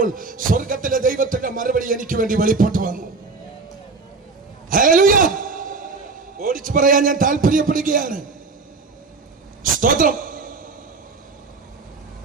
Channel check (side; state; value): left; quieter; 4.1 dB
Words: സ്വർഗത്തിലെ ദൈവത്തിന്റെ മറുപടി എനിക്ക് വേണ്ടി വെളിപ്പെട്ടു വന്നു. ഹല്ലേലൂയ. ഓടിച്ചു പറയാൻ ഞാൻ താല്പര്യപ്പെടുകയാണ്. സ്തോത്രം.